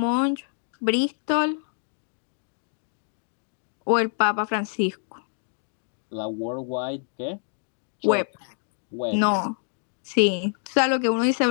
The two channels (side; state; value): right; silent; digital silence